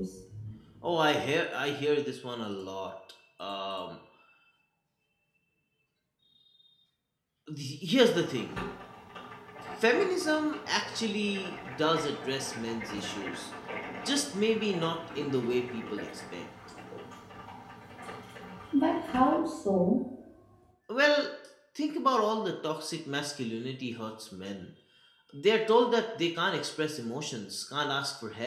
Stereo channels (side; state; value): both; identical; correlation 1.00